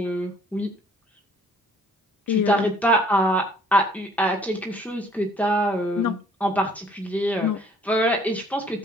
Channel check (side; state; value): both; normal; correlation 0.58